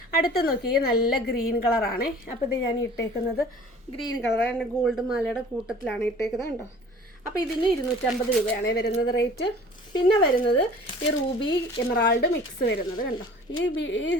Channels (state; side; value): normal; both; correlation 0.47